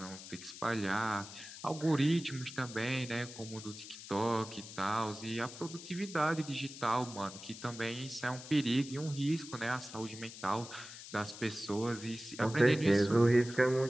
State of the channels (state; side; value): noise; left; hiss, 13 dB below the sound